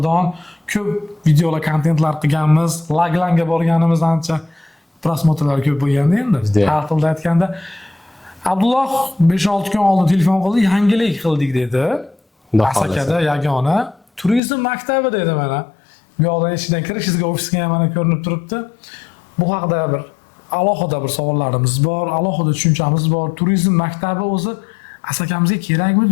ko'p videolar, kontentlar qilganmiz, Laglanga borganimiz ancha prosmotrlar ko'p bo'lganda endi. Har xilda aytganda Abdulloh 5-6 kun oldin telefon qildi, yangilik qildik dedi. Asakada yagona turizm maktabi dedi mana. Bu yoqdan eshikdan kirishingizga ofisga ham mana ko'rinib turibdi. Bu haqida bir alohida bir savollarimiz bor, alohida tushunchamiz bor. Turizm maktabi o'zi Asakamizga kerakmi,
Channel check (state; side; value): drops out; right; at 14.4 s